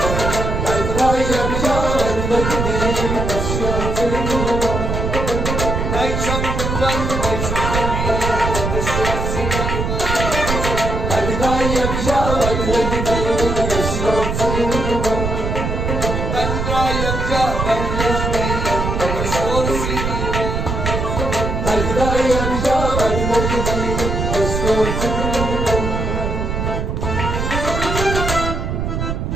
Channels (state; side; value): noise; right; rumble, 2 dB below the sound